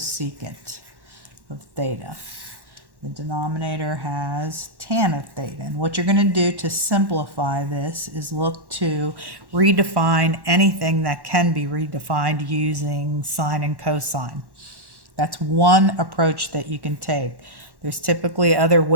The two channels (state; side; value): late; left; 1.1 ms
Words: of theta. The denominator has tan of theta. And what you're going to do to simplify this is look to redefine anything that can be redefined using sine and cosine. That's one approach that you can take. There's typically other